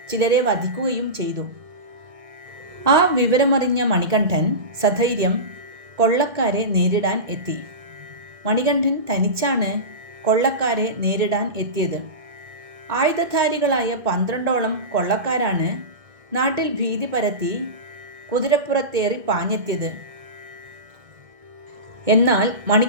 ചിലരെ വധിക്കുകയും ചെയ്തു. ആ വിവരമറിഞ്ഞ മണികണ്ഠൻ സധൈര്യം കൊള്ളക്കാരെ നേരിടാൻ എത്തി. മണികണ്ഠൻ തനിച്ചാണ് കൊള്ളക്കാരെ നേരിടാൻ എത്തിയത്. ആയുധധാരികളായ 12ഓളം കൊള്ളക്കാരാണ് നാട്ടിൽ ഭീതി പരത്തി കുതിരപ്പുറത്തേറി പാഞ്ഞെത്തിയത്. എന്നാൽ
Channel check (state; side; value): late; left; 1.7 ms